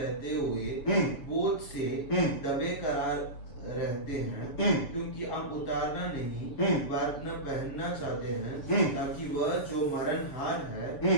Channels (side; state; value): right; late; 7.0 ms